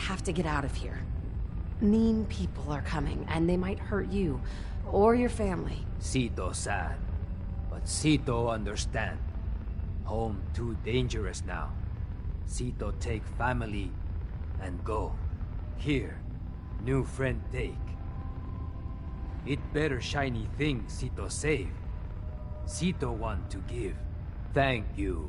to get out of here. Mean people are coming, and they might hurt you, or your family. Sito sad. But Sito understand. Home too dangerous now. Sito take family and go. Here, new friend take. It better shiny thing Sito save. Sito want to give. Thank you,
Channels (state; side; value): identical; both; correlation 1.00